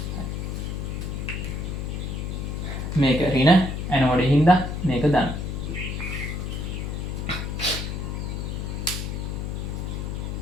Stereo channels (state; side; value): noise; left; hum, 3 dB below the sound